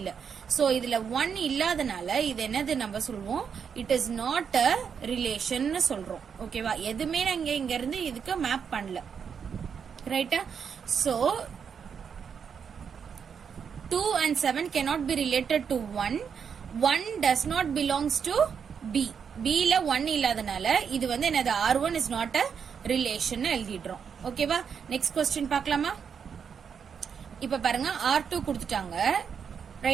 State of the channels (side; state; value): left; quieter; 6.9 dB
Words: சோ இதுல 1 இல்லாதனால இது என்னது நம்ம சொல்வோம்? It is not a relation சொல்றோம். ஓகேவா? எதுவுமே நாங்க இங்க இருந்து இதுக்கு மேப் பண்ணல. ரைட்டா? So 2 and 7 cannot be related to 1. 1 does not belongs to B. B ல 1 இல்லாதனால இது வந்து என்னது? R1 is not a relation எழுதிடுறோம். ஓகேவா? நெக்ஸ்ட் क्वेश्चन பார்க்கலாமா? இப்ப பாருங்க R2 கொடுத்துட்டாங்க.